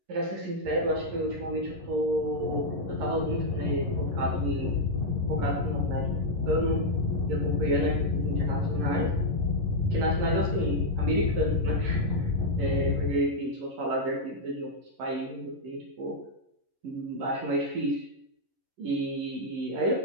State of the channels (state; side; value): late; left; 11 ms